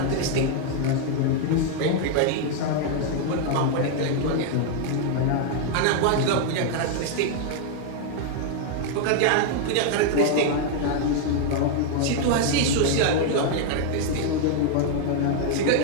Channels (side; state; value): both; different; correlation 0.00